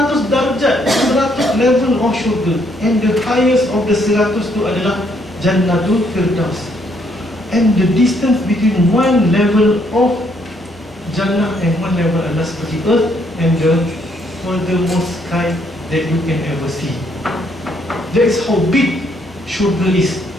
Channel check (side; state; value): left; noise; hum, 26 dB below the sound